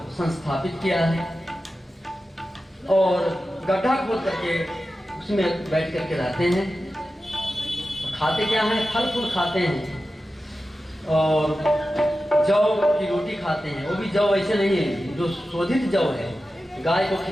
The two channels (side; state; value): both; normal; correlation 0.93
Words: संस्थापित किया है और गड्ढा खोद करके उसमें बैठ करके रहते हैं। खाते क्या हैं? फल फूल खाते हैं और जौ की रोटी खाते हैं। वो भी जौ ऐसे नहीं है जो शोधित जौ है, गाय को